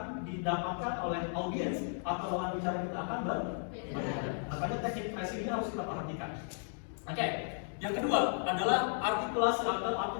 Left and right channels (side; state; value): right; silent; 55 dB below the other